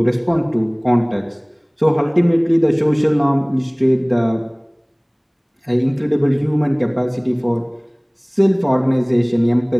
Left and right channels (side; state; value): both; identical; correlation 1.00